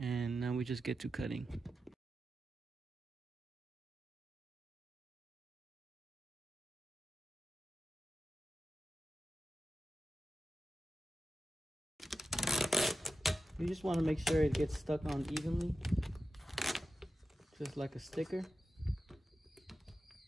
now we just get to cutting. You just want to make sure it gets stuck on evenly, just like a sticker.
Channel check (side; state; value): both; normal; correlation 0.92